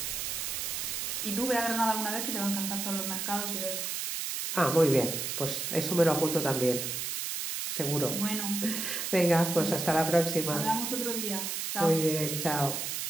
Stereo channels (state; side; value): noise; right; hiss, 3 dB below the sound